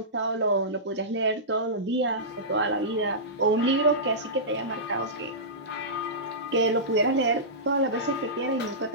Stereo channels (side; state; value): both; normal; correlation -0.18